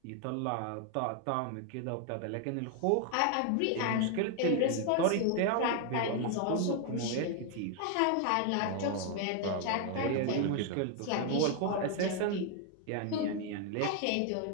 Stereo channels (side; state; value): both; different; correlation 0.00